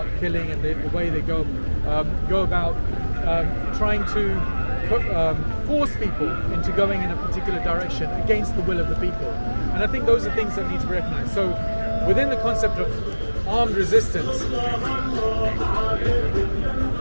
killing, and the way they go about trying to force people into going in a particular direction against the will of the people. And I think those are things that need to be recognized. So within the concept of armed resistance, is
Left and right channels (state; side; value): inverted; both; correlation -1.00